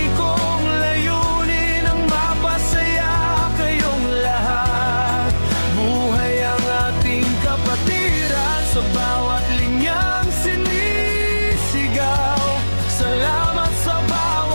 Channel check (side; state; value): both; inverted; correlation -1.00